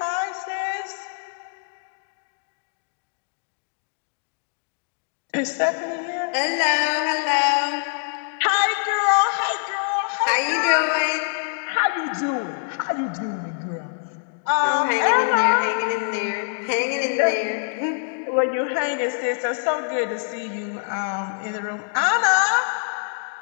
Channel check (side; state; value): right; silent; digital silence